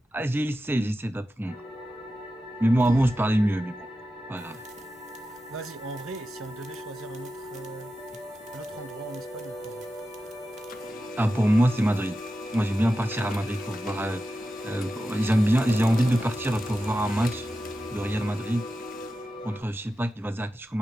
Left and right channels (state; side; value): normal; both; correlation 0.91